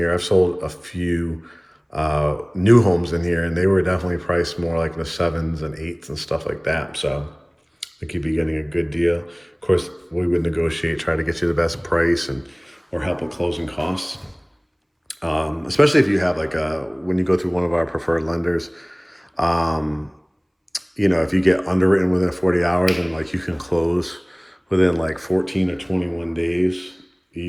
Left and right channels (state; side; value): identical; both; correlation 1.00